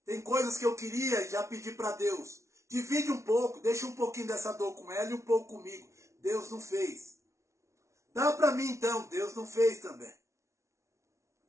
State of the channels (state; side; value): late; left; 0.14 ms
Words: Tem coisas que eu queria e já pedi para Deus. Divide um pouco, deixa um pouquinho dessa dor com ela e um pouco comigo. Deus não fez. Dá para mim então, Deus não fez também.